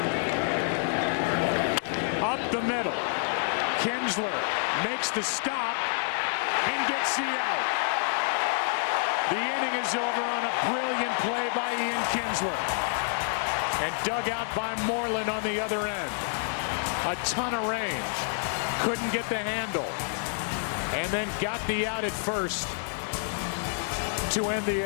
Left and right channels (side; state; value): right; silent; digital silence